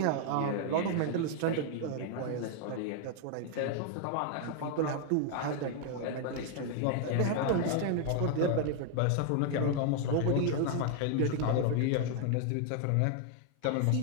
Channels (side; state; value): both; different; correlation 0.00